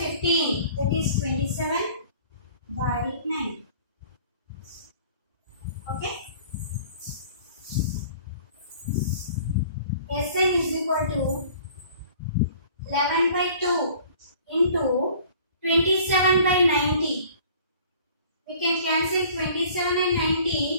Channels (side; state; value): both; inverted; correlation -0.50